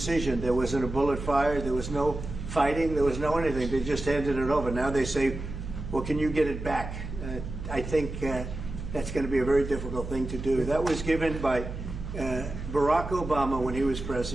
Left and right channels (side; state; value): right; noise; hum, 8 dB below the sound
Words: There wasn't a bullet fired. There was no fighting. There was no anything. They just handed it over. Now they say, well, can you get it back? I think that's going to be a very difficult thing to do. That was given by Barack Obama when he was